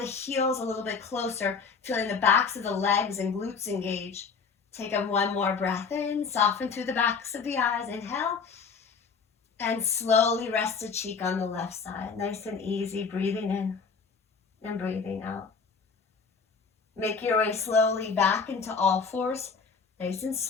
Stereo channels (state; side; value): quieter; right; 5.4 dB